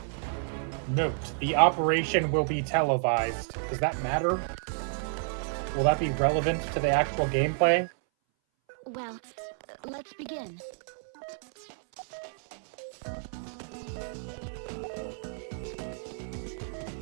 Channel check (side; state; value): left; silent; 58 dB below the other